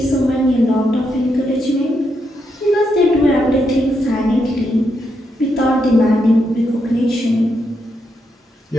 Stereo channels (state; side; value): normal; both; correlation 0.81